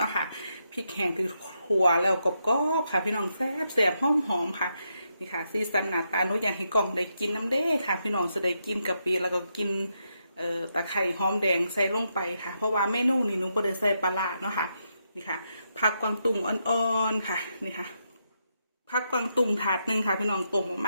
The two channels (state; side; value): inverted; both; correlation -0.82